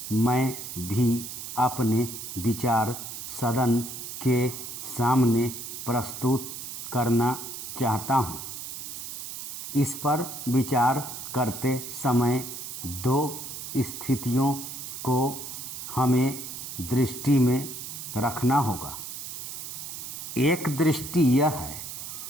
मैं भी अपने विचार सदन के सामने प्रस्तुत करना चाहता हूँ। इस पर विचार करते समय दो स्थितियों को हमें दृष्टि में रखना होगा। एक दृष्टि यह है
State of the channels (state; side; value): noise; right; hiss, 8 dB below the sound